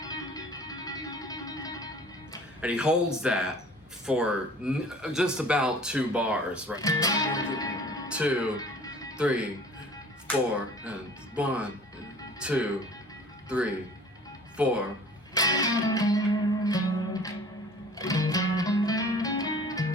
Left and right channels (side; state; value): both; normal; correlation 0.48